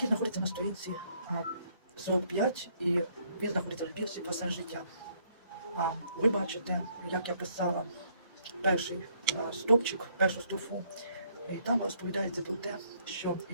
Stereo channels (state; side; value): inverted; both; correlation -0.68